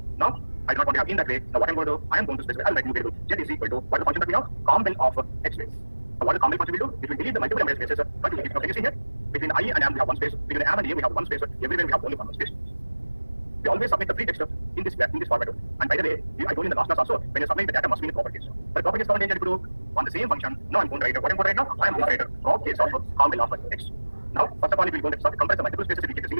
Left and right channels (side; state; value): both; inverted; correlation -1.00